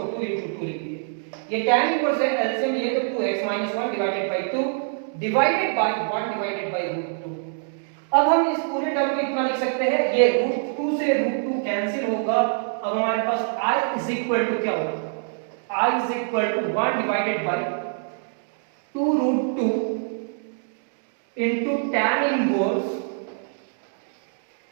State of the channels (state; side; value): silent; left; digital silence